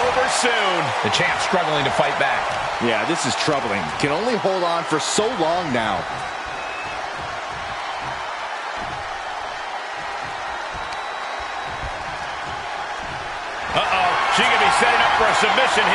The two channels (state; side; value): identical; both; correlation 1.00